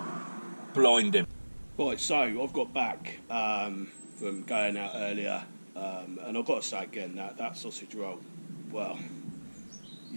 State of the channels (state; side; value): inverted; both; correlation -1.00